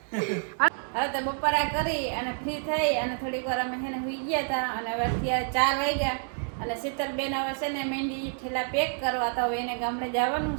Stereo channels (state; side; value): silent; left; 59 dB below the other